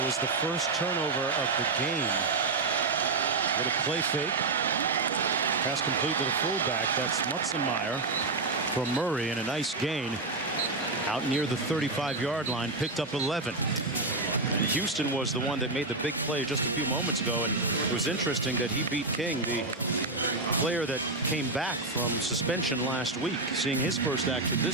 was the first turnover of the game. Little play fake. Pass complete to the fullback. That's Mutzenmeyer from Murray, and a nice gain out near the 35-yard line. Picked up 11. And Houston was the one that made the big play just a few moments ago, and it was interesting that he beat King, the player that came back from suspension last week, seeing his first action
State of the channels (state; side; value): quieter; left; 3.4 dB